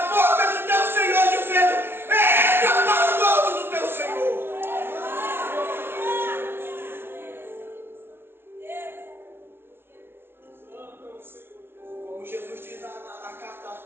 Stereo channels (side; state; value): left; late; 0.11 ms